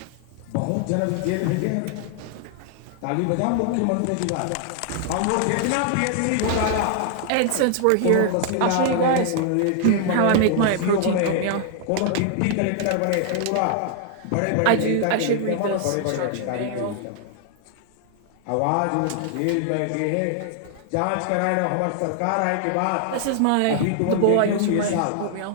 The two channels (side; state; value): both; different; correlation 0.00